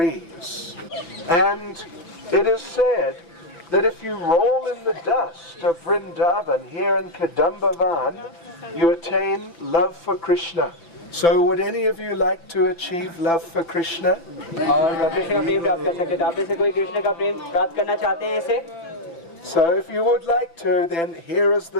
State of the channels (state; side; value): late; right; 5.9 ms